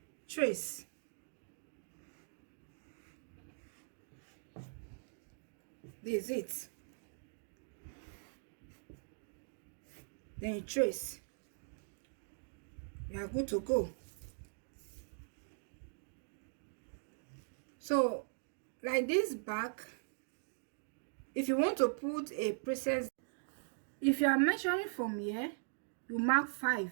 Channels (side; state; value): left; silent; digital silence